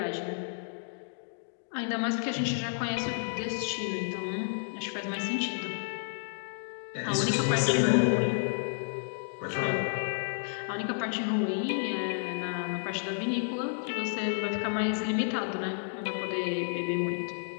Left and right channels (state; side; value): silent; right; digital silence